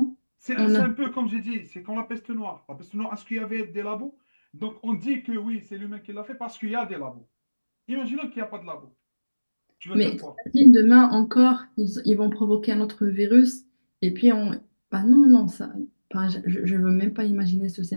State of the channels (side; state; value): both; inverted; correlation -1.00